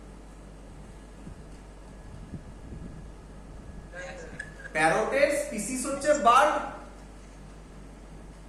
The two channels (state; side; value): identical; both; correlation 1.00